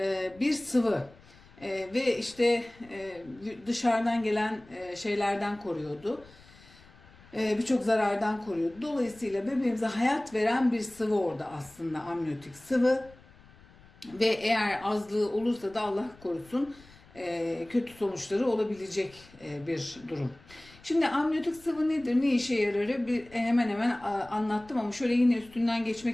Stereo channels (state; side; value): noise; left; rumble, 25 dB below the sound